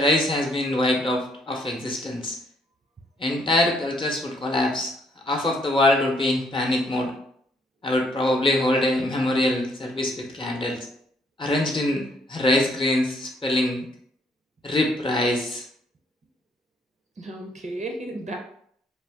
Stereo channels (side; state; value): both; normal; correlation 0.68